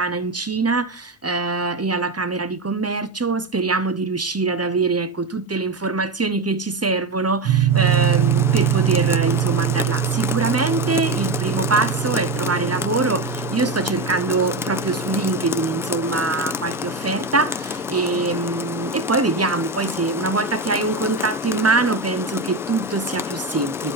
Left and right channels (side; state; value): left; quieter; 3.3 dB